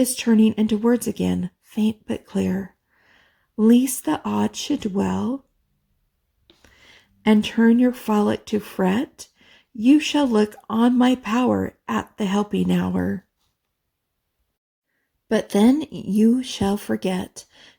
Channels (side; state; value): both; identical; correlation 1.00